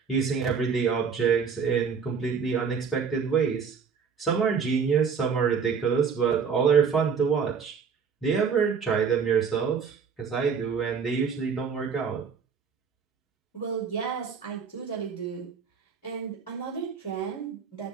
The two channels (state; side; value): quieter; left; 6.2 dB